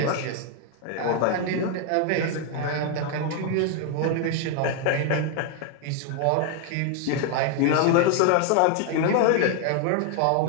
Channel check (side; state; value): both; different; correlation 0.00